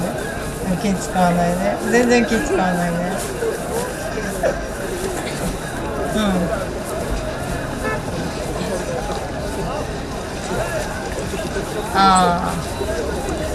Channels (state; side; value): identical; both; correlation 1.00